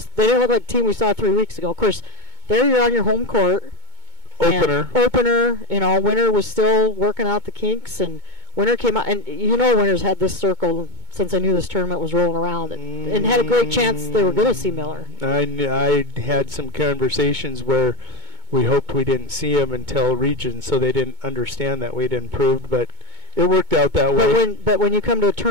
look like the team we saw 3 weeks ago. Of course, there you're on your home court. Opener. Winner was still working out the kinks, and Winner came out, and Winner's had this circle since I knew this tournament was rolling around, and had a great chance they were going to see Miller. I had some conversations where we hoped we didn't see him until region, so they didn't understand that we'd improved, but it worked out that way. But when you come to a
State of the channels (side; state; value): left; late; 2.2 ms